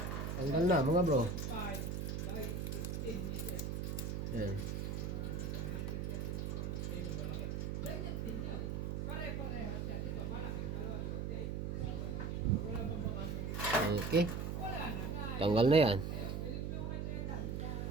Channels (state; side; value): noise; right; hum, 2 dB below the sound